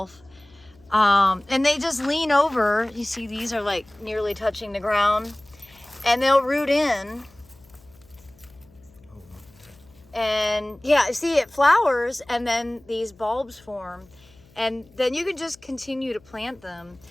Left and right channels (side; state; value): left; noise; hum, 28 dB below the sound